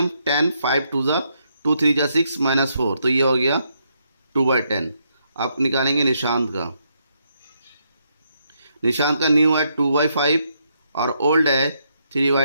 10, 5 2 जा 2 3 जा 6 माइनस 4, तो ये हो गया 2/10। आप निकालेंगे निशांत का, निशांत का न्यू है 2/5 और ओल्ड है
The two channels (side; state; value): both; inverted; correlation -0.77